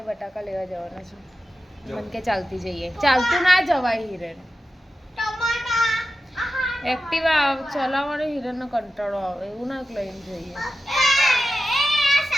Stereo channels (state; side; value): normal; both; correlation 0.92